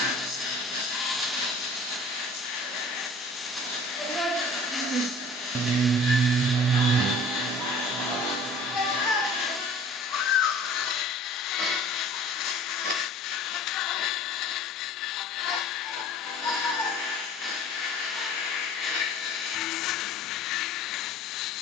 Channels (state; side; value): normal; both; correlation 0.47